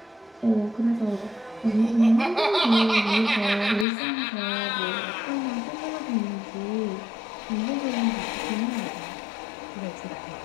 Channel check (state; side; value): drops out; right; at 3.9 s